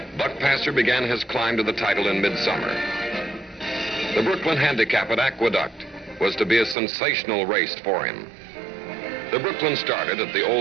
Buckpasser began his climb to the title in midsummer. The Brooklyn Handicap at Aqueduct was to be a sensational race for him. The Brooklyn started at the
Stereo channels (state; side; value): drops out; left; at 6.8 s